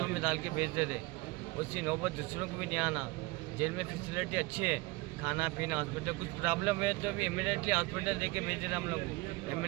में डाल के भेज देते, उसकी नौबत दूसरों को भी नहीं आना। जेल में फैसिलिटी अच्छी है, खाना पीना हॉस्पिटल, कुछ प्रॉब्लम है तो भी इमीडिएटली हॉस्पिटल देके भेज रहे हम लोग,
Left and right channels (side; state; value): left; quieter; 22.7 dB